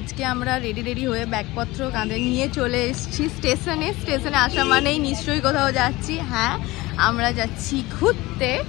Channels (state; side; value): quieter; right; 20.2 dB